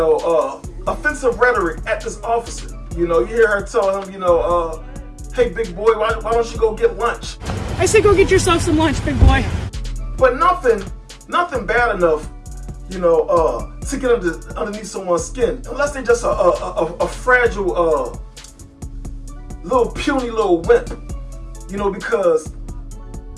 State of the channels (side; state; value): both; identical; correlation 1.00